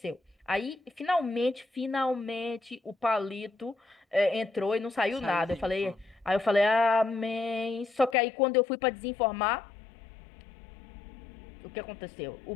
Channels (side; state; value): right; drops out; at 8.2 s